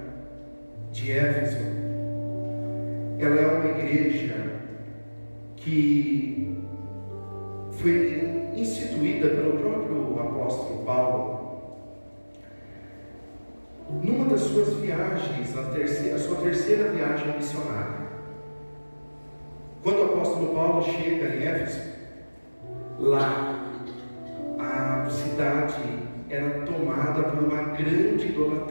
de Éfeso, ela é uma igreja que foi instituída pelo próprio apóstolo Paulo numa das suas viagens, a sua terceira viagem missionária. Quando o apóstolo Paulo chega em Éfeso, lá a cidade era tomada por uma grande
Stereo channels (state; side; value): inverted; both; correlation -1.00